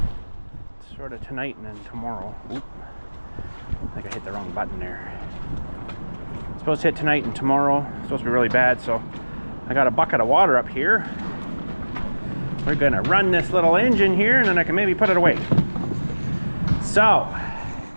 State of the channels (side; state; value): both; inverted; correlation -1.00